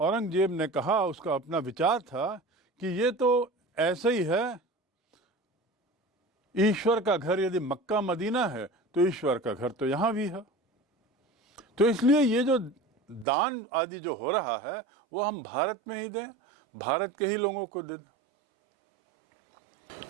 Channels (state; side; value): drops out; left; at 13.2 s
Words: ने कहा, उसका अपना विचार था कि ये तो ऐसे ही है, ईश्वर का घर यदि मक्का मदीना है तो ईश्वर का घर तो यहाँ भी है, तो इसलिए ये जो दान आदि जो हो रहा है वो हम भारत में ही दें, भारत के ही लोगों को दे दें।